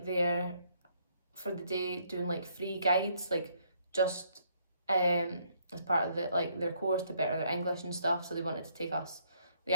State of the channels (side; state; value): both; inverted; correlation -0.69